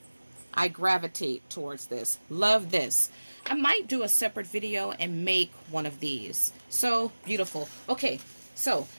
I gravitate towards this. Love this. I might do a separate video and make one of these. So beautiful. Okay, so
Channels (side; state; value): both; inverted; correlation -1.00